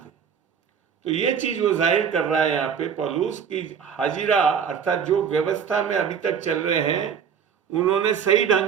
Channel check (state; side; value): quieter; left; 7.3 dB